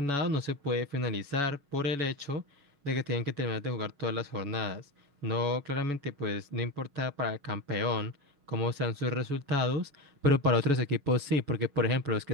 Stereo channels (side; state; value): left; late; 7.1 ms